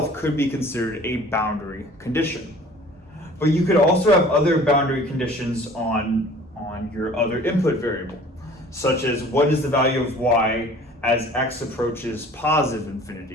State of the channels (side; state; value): both; normal; correlation 0.48